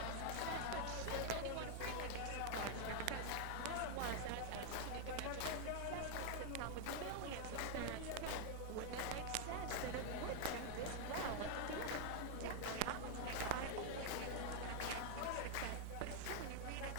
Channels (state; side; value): different; both; correlation 0.00